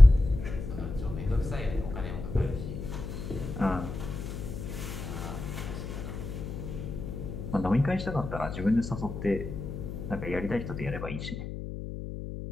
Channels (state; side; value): noise; left; hum, 7 dB below the sound